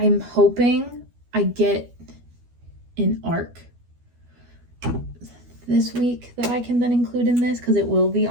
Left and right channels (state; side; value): late; left; 12 ms